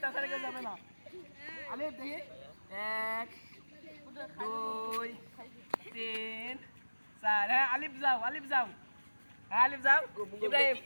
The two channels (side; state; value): both; inverted; correlation -1.00